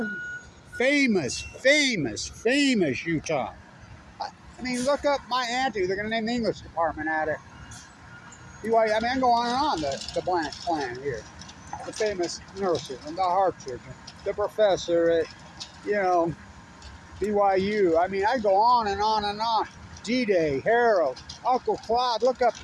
famous Utah. I mean, look up my auntie. They're going to name the English department at it. I mean, I go on and on, the Blanch clan here. The famous neurosurgeon, the heart surgeon, the professor at, you know, BYU. I mean, I go on and on and on. D-Day, Harold, Uncle Claude, look up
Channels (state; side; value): identical; both; correlation 1.00